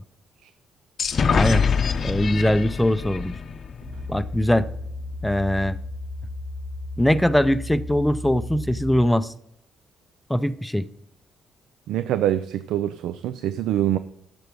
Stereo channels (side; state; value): both; normal; correlation 0.86